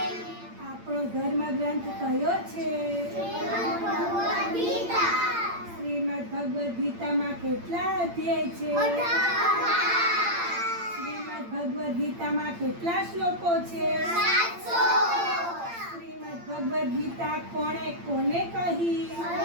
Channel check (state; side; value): late; left; 8.7 ms